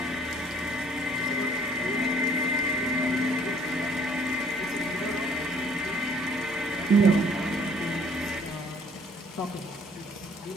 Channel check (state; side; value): normal; both; correlation 0.58